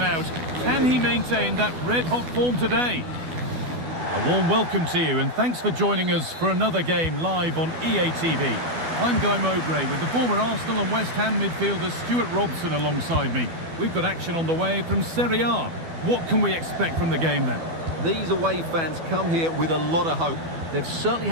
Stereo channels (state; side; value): late; left; 12 ms